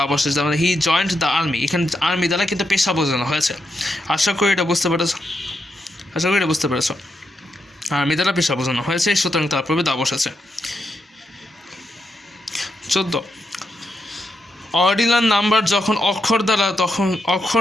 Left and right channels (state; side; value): normal; both; correlation 0.83